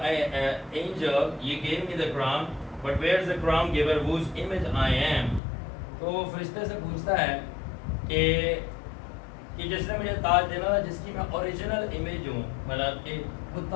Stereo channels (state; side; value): drops out; right; at 5.4 s